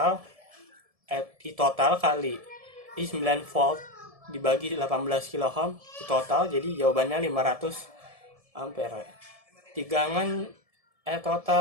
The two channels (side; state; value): left; late; 1.7 ms